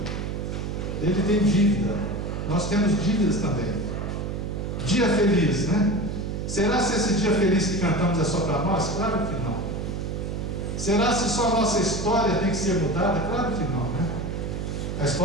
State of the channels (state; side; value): noise; right; hum, 4 dB below the sound